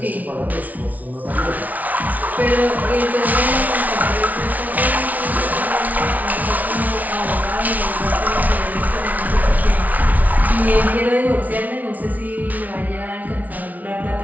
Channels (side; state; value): left; late; 0.074 ms